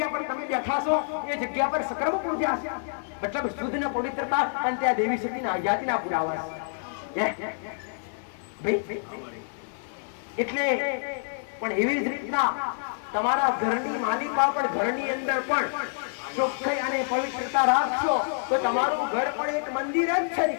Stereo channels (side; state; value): right; silent; 60 dB below the other